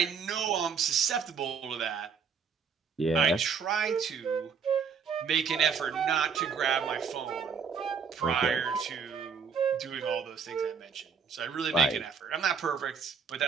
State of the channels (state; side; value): quieter; left; 6.3 dB